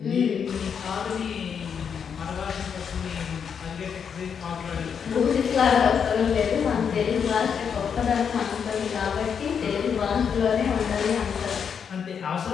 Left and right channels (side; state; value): right; quieter; 7.1 dB